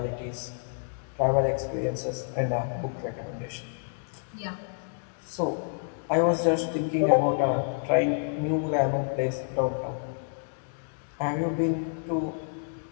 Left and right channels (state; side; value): silent; right; digital silence